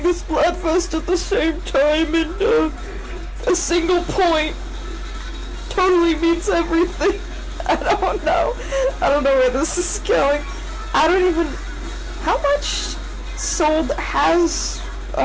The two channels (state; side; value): identical; both; correlation 1.00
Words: this Splatfest at the same time, and a single point totally means everything. I don't know where this is going. I don't even... How much sold has